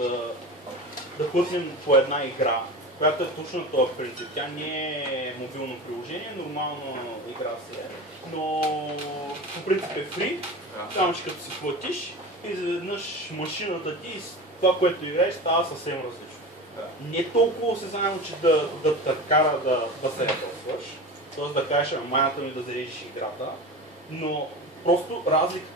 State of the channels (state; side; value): normal; both; correlation 0.29